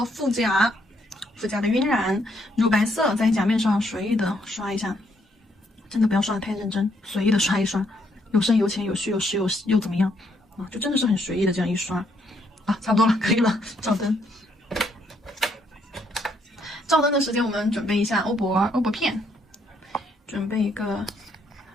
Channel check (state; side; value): normal; both; correlation 0.72